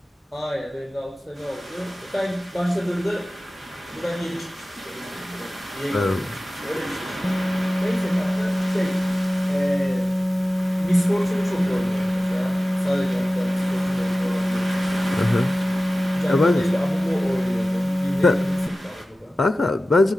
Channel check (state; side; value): normal; both; correlation 0.96